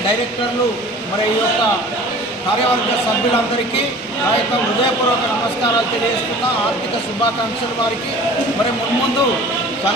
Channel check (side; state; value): both; normal; correlation 0.44